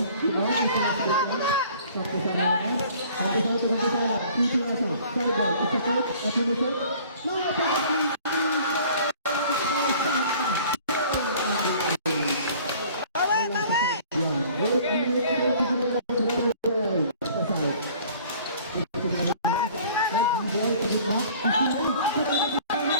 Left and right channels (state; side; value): inverted; both; correlation -0.51